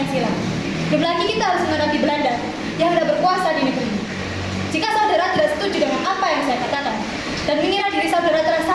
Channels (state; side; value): identical; both; correlation 1.00